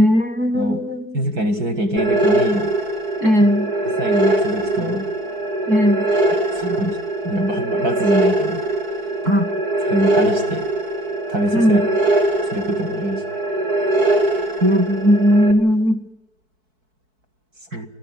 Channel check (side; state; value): left; late; 4.6 ms